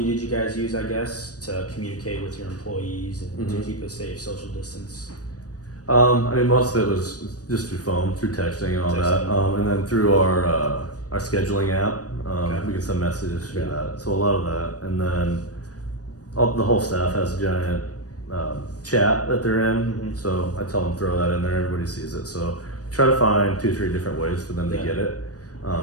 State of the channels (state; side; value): late; right; 0.68 ms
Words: did you guys use, I guess, to communicate with your employees and to keep a safe social distance? Most of it was just through phone, through texting and all that, and then through our scheduling app. We can send messages through that. So a lot of that, and then the whole staff has a giant chat that they're in. So I tell them throw that in there. Everybody sees it. So try to find 2-3 different ways for them to get it,